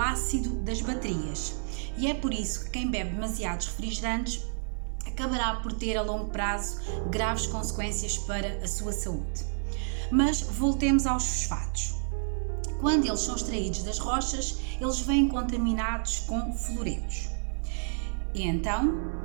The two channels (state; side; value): silent; left; digital silence